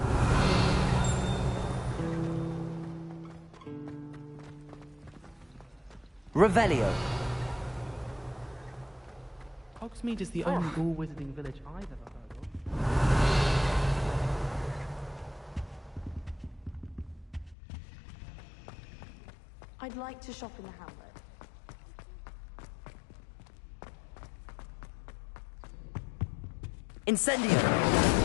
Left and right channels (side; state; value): right; drops out; at 17.6 s